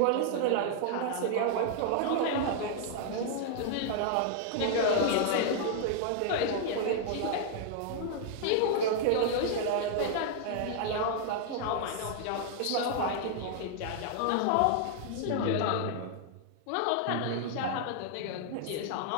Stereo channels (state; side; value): different; both; correlation -0.01